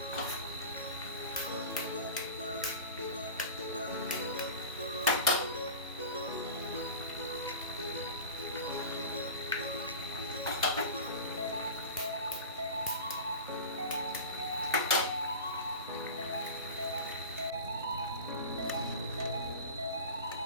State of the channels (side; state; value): both; inverted; correlation -0.31